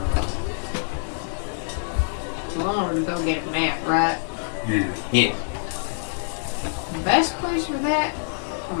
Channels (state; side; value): silent; right; digital silence